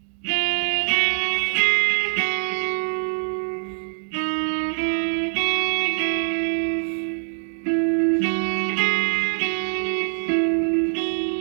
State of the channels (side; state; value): left; silent; digital silence